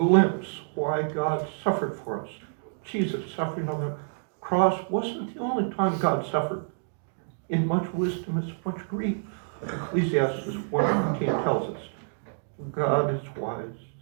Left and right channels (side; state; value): left; silent; digital silence